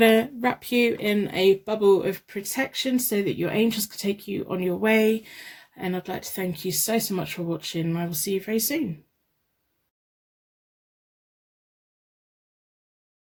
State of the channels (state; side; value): identical; both; correlation 1.00